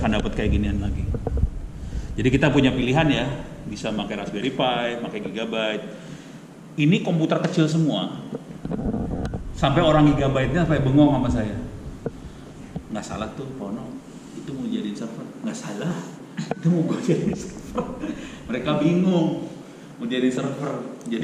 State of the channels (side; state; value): both; identical; correlation 1.00